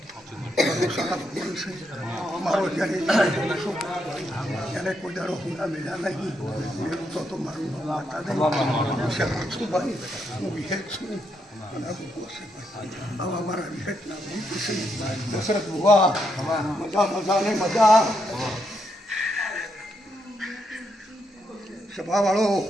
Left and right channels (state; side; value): normal; both; correlation 0.80